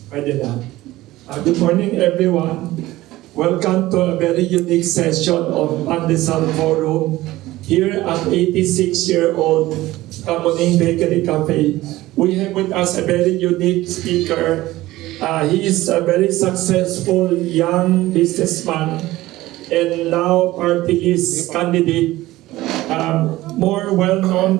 Pwede na. Good morning, everyone. Welcome to a very unique session of Pandesal Forum here at 86-year-old Kamuning Bakery Cafe. We have with us a very unique speaker. He is a very successful young businessman and now party list candidate, more well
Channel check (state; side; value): quieter; left; 17.2 dB